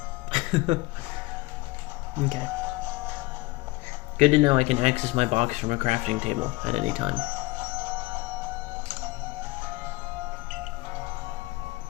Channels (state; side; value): quieter; right; 21.7 dB